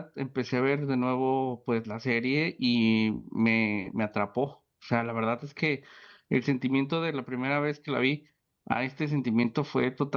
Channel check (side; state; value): both; identical; correlation 1.00